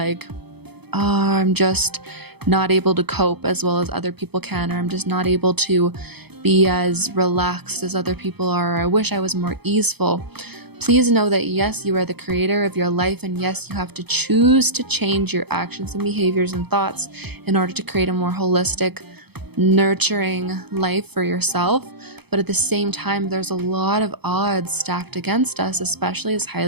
oh, I'm just not able to cope as well as other people can, or I'm just not able to be as relaxed as other people are, or I wish I was more easeful, please know that yes, you are the creator of your life, and yes, you have to choose to change your actions and behaviors and thoughts in order to create a more holistic, nurturing life for yourself. But at the same time, there's a lot of odds stacked against us, especially as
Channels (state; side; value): late; left; 0.98 ms